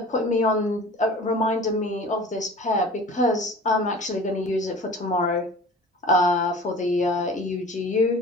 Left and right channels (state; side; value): normal; both; correlation 0.41